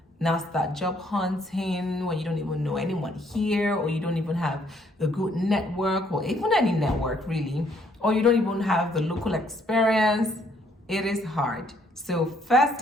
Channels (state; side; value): normal; both; correlation 0.67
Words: now start job hunting when you don't even know anyone here, or you don't even have a good network, or even any network really, or you don't even have the local experience. It is hard. So first